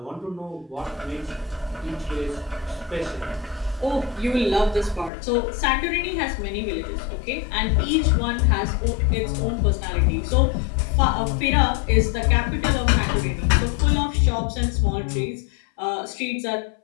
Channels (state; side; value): drops out; right; at 5.1 s